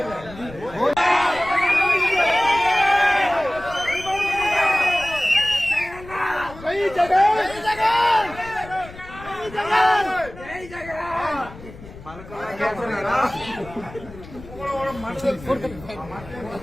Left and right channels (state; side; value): noise; left; rumble, 17 dB below the sound